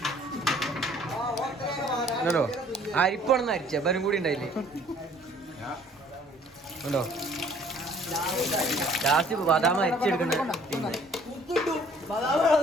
ഉണ്ടോ? അരിപ്പാണെന്ന് അരിച്ച ബരും കൂടി ഉണ്ടായില്ലേ ഉണ്ടോ? ലാസ്റ്റ് ബദാം അരിച്ചെടുക്കണ്ട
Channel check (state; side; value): normal; both; correlation 0.56